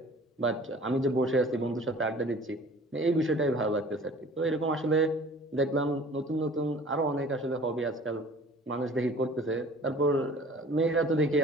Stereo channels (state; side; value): normal; both; correlation 0.48